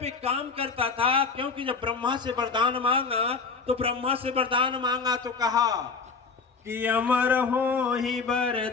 एक काम करता था, क्योंकि जब ब्रह्मा से वरदान मांगा तो ब्रह्मा से वरदान मांगा तो कहा कि अमर हो ही बर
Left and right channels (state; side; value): quieter; right; 4.8 dB